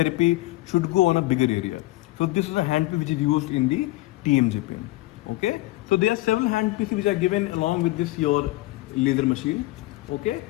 should go on a bigger area. So this is a handpiece which is used in the TMJ pain. Okay. So there are several handpieces which are given along with this your laser machine. Okay.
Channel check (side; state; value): right; quieter; 19.0 dB